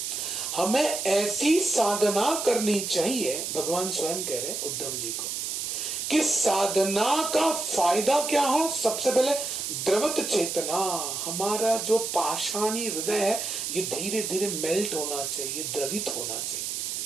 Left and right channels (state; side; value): noise; right; hiss, 3 dB below the sound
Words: हमें ऐसी साधना करनी चाहिए, भगवान स्वयं कह रहे उद्धव जी को, कि साधना का फायदा क्या हो। सबसे पहले द्रवत चेतना, हमारा जो पाषाणी हृदय है ये धीरे धीरे मेल्ट होना चाहिए, द्रवित होना